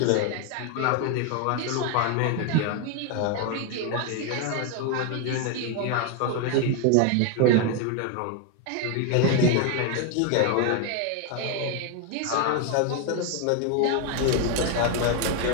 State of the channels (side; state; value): both; different; correlation 0.01